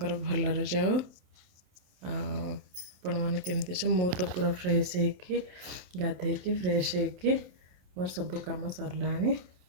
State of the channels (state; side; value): late; left; 27 ms